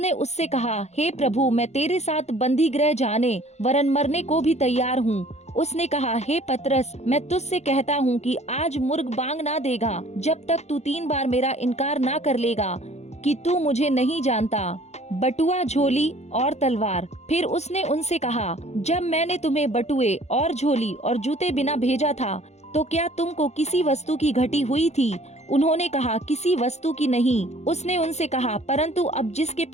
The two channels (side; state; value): right; late; 0.32 ms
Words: उससे कहा, हे प्रभु, मैं तेरे साथ बंदी गृह जाने वरन मरने को भी तैयार हूँ। उसने कहा, हे पतरस, मैं तुझसे कहता हूँ कि आज मुर्ग बांग ना देगा जब तक तू 3 बार मेरा इनकार ना कर लेगा कि तू मुझे नहीं जानता। बटुआ, झोली और तलवार। फिर उसने उनसे कहा, जब मैंने तुम्हें बटुए और झोली और जूते बिना भेजा था तो क्या तुमको किसी वस्तु की घटी हुई थी? उन्होंने कहा, किसी वस्तु की नहीं। उसने उनसे कहा, परंतु अब जिसके